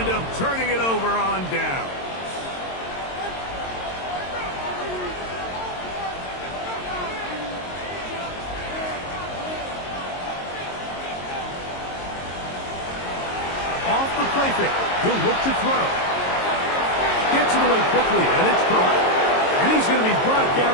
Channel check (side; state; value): right; late; 22 ms